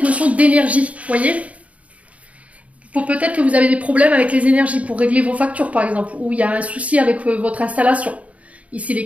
notion d'énergie, vous voyez? Peut-être que vous avez des problèmes avec les énergies pour régler vos factures par exemple, ou il y a un souci avec votre installation. Ici les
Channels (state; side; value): late; left; 0.067 ms